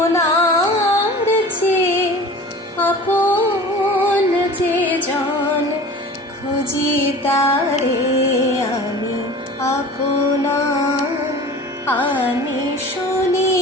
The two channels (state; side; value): normal; both; correlation 0.39